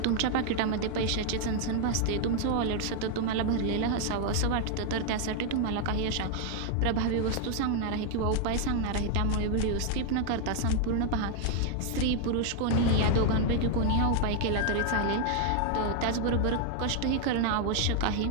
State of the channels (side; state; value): both; different; correlation 0.00